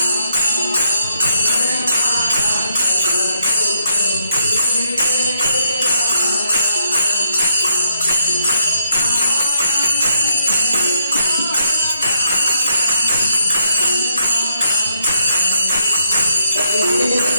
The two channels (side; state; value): both; inverted; correlation -0.76